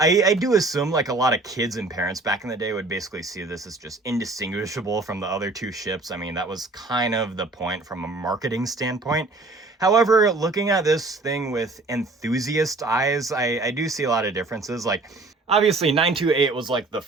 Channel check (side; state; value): left; quieter; 3.3 dB